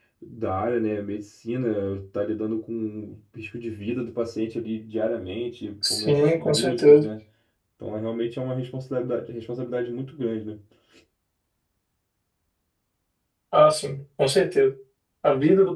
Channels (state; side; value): identical; both; correlation 1.00